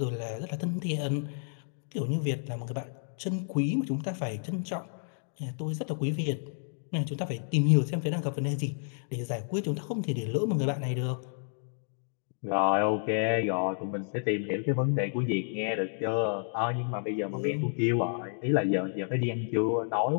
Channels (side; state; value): right; silent; digital silence